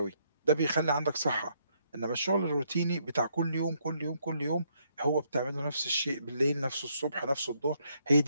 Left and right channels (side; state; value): both; inverted; correlation -0.73